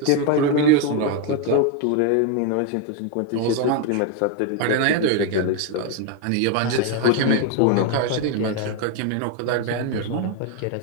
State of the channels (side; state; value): both; different; correlation 0.01